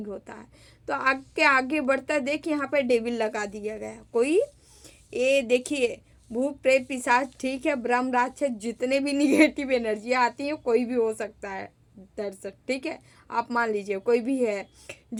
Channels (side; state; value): both; identical; correlation 1.00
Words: होता है, तो आगे आगे बढ़ता देख यहाँ पे डेविल लगा दिया गया। कोई ये देखिए, भूत प्रेत पिशाच, ठीक है, ब्रह्म राक्षस, जितने भी निगेटिव एनर्जी आती है कोई भी हो सकता है दर्शक, ठीक है। आप मान लीजिए कोई भी है